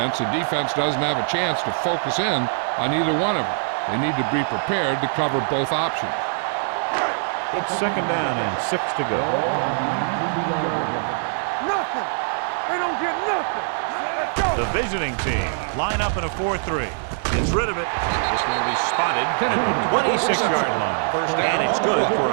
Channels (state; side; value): silent; left; digital silence